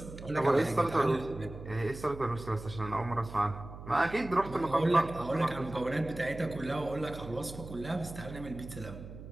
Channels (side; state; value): right; noise; hum, 13 dB below the sound